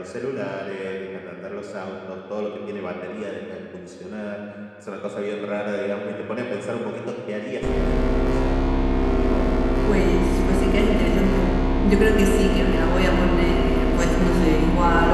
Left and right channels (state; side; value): identical; both; correlation 1.00